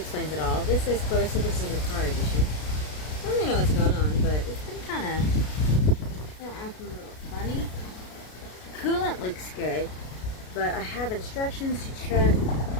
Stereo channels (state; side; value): late; right; 33 ms